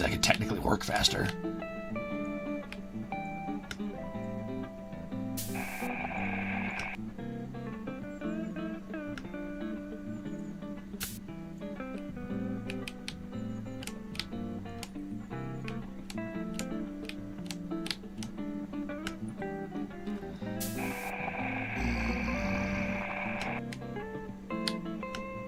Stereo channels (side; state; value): both; identical; correlation 1.00